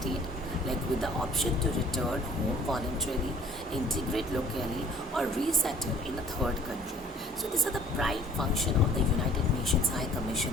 with the option to return home voluntarily, integrate locally, or resettle in a third country. So these are the prime function of the United Nations Nations High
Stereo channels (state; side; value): normal; both; correlation 0.52